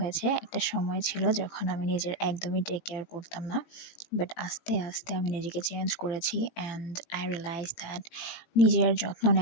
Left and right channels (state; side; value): late; right; 18 ms